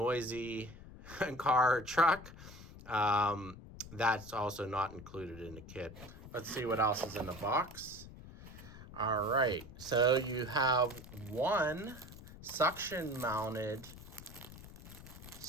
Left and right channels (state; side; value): noise; left; rumble, 15 dB below the sound